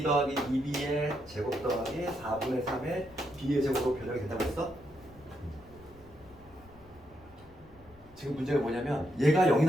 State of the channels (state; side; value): noise; left; rumble, 24 dB below the sound